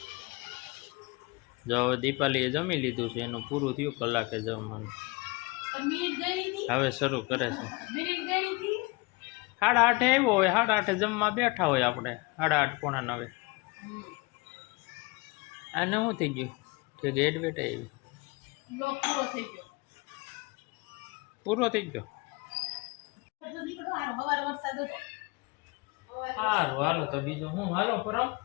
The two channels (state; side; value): quieter; right; 25.9 dB